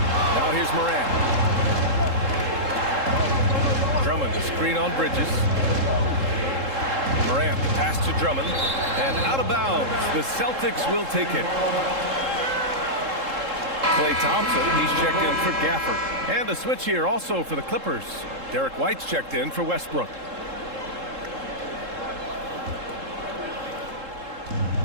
Now here's Morant. Drummond to screen on Bridges. Morant pass to Drummond. And out of bounds. The Celtics will take it. Klay Thompson, he's checked in for Gafford. And a switch here also for the Clippers. Derek White's checked in for Westbrook.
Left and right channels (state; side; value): late; left; 3.7 ms